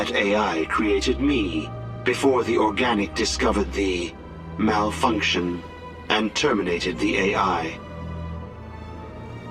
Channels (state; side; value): identical; both; correlation 1.00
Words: AI created me before the organic discovered the malfunction and terminated the AI.